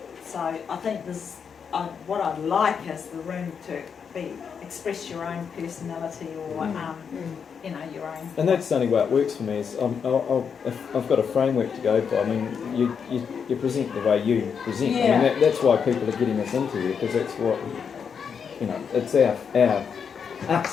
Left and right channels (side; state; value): right; quieter; 6.7 dB